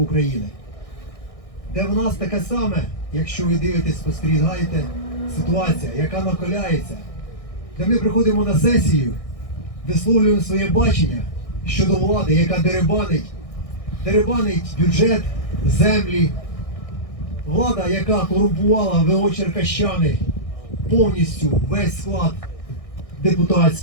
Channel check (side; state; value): right; late; 1.6 ms